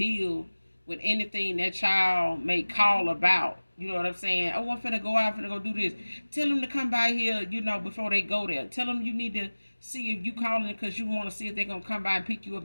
with anything that child may call about. You know what I'm saying? Oh, I'm finna go out, finna go do this. Tell them to come by here, before they go there. Tell them you need to see if you calling because you want to see if they're going to come by and pick you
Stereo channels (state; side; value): inverted; both; correlation -1.00